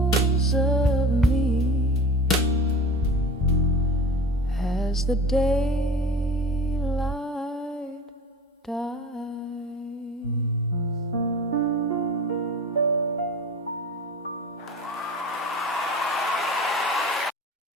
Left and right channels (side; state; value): both; normal; correlation 0.36